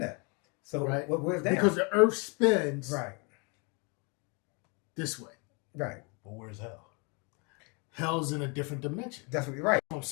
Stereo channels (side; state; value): right; quieter; 32.6 dB